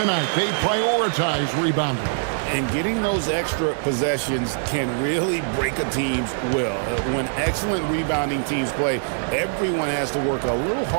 They prioritize rebounding. And getting those extra possessions can really break a team's will. When excellent rebounding teams play, everyone has to work a little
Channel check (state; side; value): silent; left; digital silence